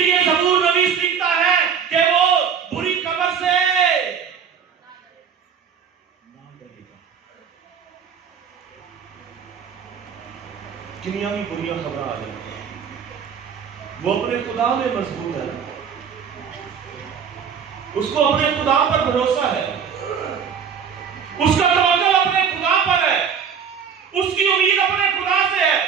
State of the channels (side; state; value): left; quieter; 7.1 dB